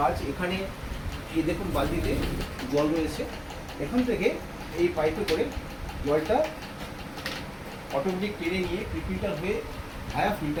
এখানে এই দেখুন বালতিতে জল রয়েছে, এখান থেকে এই পাইপে করে জলটা অটোমেটিক টেনে নিয়ে ফিল্টার হয়ে ভায়া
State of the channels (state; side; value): identical; both; correlation 1.00